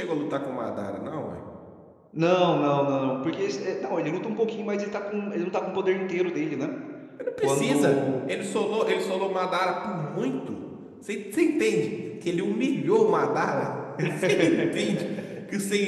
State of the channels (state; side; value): identical; both; correlation 1.00